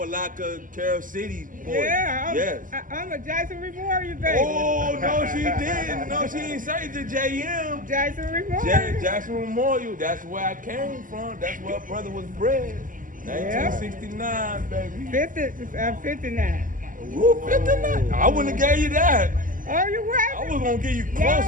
Carroll City boy. Yeah, yes. I'm a Jason Memorial baby. Oh, no, she didn't. No, she didn't say the JM. Jason Memorial. Jackson Memorial. That's where I came from. That's where brother was bred. 1969, baby. 59. Woo, 59. I wouldn't have gave you that. Oh, you what? I was gonna give you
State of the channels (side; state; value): left; late; 0.39 ms